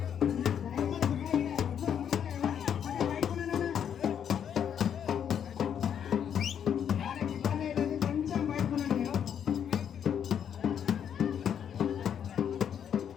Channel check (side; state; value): right; quieter; 8.6 dB